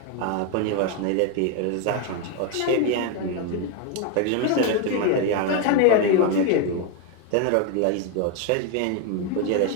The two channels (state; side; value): different; both; correlation 0.02